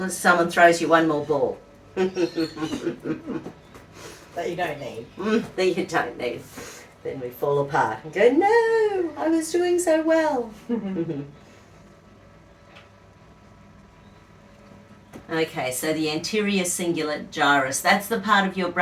someone throws you one more ball. That you don't need. That you don't need. Then we fall apart and go, no, I was doing so well. Okay, so the anterior cingulate gyrus, that's the part of your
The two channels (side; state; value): both; identical; correlation 1.00